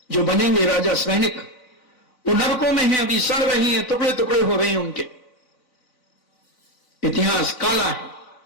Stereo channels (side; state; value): right; late; 3.9 ms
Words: जो बनेंगे राजा सैनिक, वो नरकों में हैं, अभी सड़ रही हैं, टुकड़े टुकड़े हो रहे हैं उनके। इतिहास काला है।